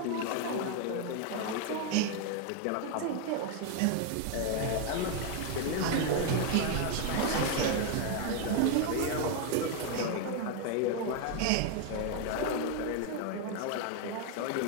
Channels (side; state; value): both; different; correlation 0.01